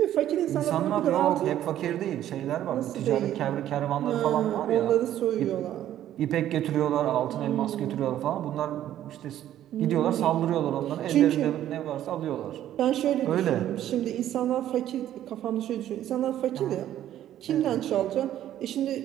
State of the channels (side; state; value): left; quieter; 12.0 dB